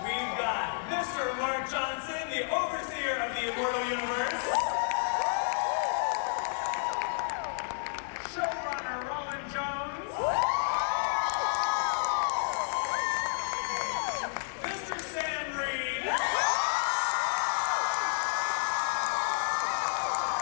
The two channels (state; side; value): silent; right; digital silence